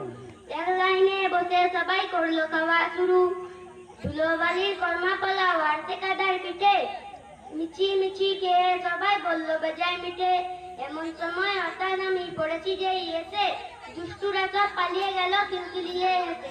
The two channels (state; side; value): identical; both; correlation 1.00